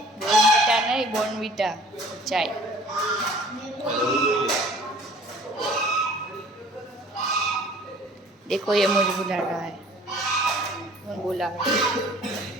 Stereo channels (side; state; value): both; normal; correlation 0.51